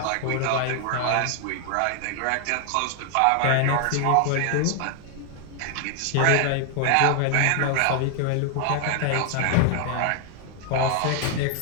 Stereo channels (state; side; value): different; both; correlation 0.00